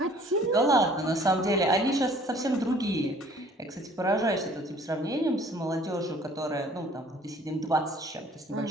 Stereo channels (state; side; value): normal; both; correlation 0.54